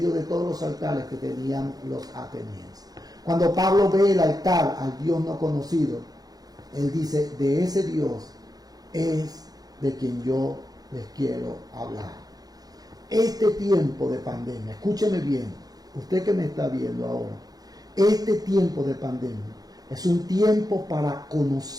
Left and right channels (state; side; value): late; left; 0.19 ms